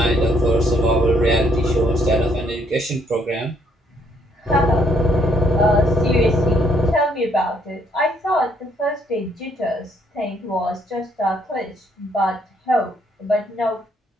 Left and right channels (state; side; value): normal; both; correlation 0.69